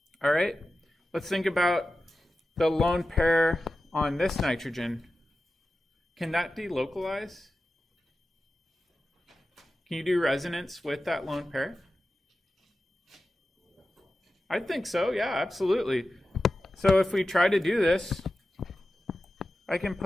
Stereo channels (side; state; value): both; normal; correlation 0.93